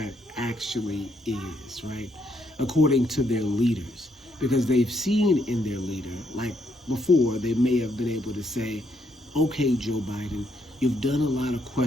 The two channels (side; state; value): both; normal; correlation 0.74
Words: actually is, right? According to their leaders. Because they've seen in their leader, like before, they may have been able to say, okay, Joe Biden, you've done a lot of